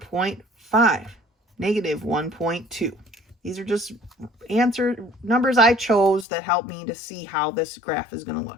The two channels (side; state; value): right; drops out; at 6.2 s